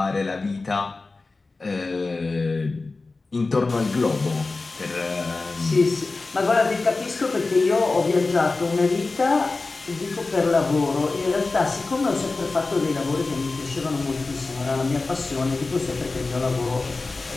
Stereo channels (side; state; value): right; quieter; 3.6 dB